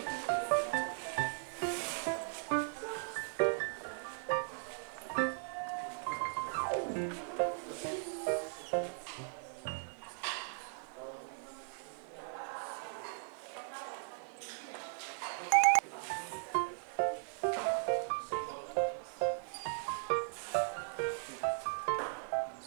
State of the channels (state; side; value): silent; left; digital silence